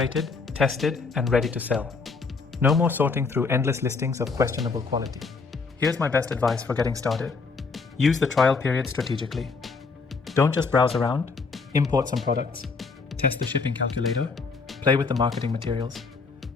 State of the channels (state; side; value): quieter; right; 4.5 dB